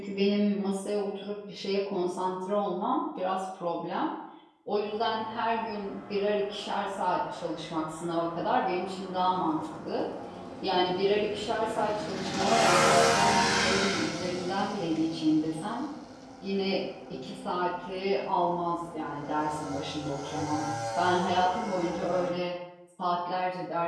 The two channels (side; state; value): both; identical; correlation 1.00